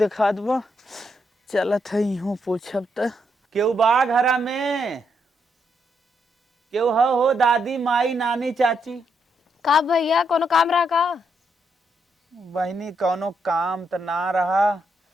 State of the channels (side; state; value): both; normal; correlation 0.78